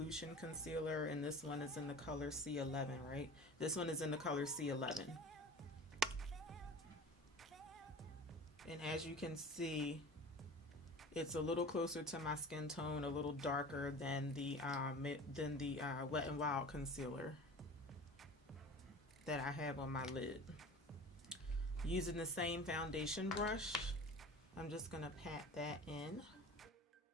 concealer, and this one is in the color C11, right? This one is in the color C11. And as you can see, it's a little closer to my skin tone, a little darker than the Wet n Wild concealer that I have on my lid. Using the same foundation brush, I'm just gonna pat that in.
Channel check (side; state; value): both; normal; correlation 0.38